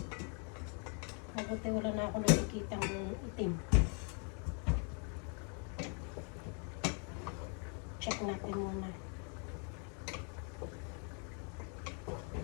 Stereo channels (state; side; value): quieter; right; 39.8 dB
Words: Mabuti wala na ako nakikita ng itim. Check natin muna.